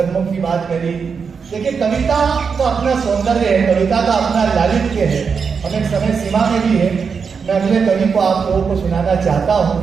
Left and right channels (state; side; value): quieter; left; 5.8 dB